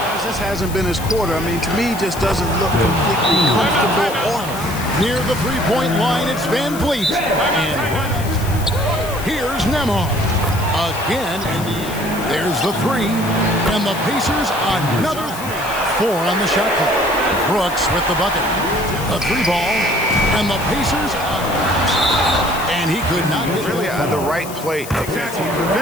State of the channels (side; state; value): left; noise; hiss, 13 dB below the sound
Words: This hasn't been his quarter. I mean, to me, just doesn't look completely comfortable or Near the three-point line, it's Van Vliet. And here's Nembhard. Again, and there's the three. And the Pacers, another three. 4 on the shot clock. Brooks with the bucket. A three ball. And the Pacers, and he could not get Really the right play.